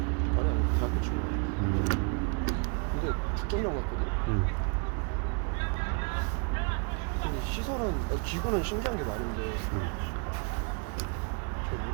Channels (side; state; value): left; quieter; 36.6 dB